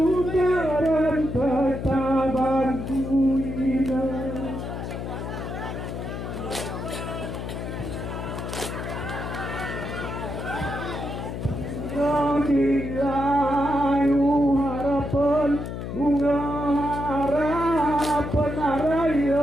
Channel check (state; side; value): noise; left; hum, 6 dB below the sound